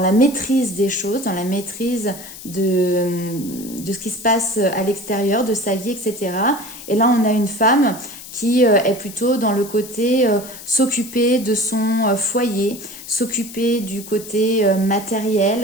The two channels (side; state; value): left; noise; hiss, 14 dB below the sound